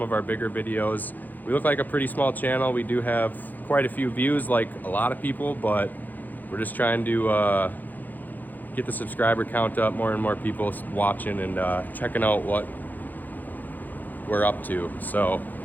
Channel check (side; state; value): right; late; 0.085 ms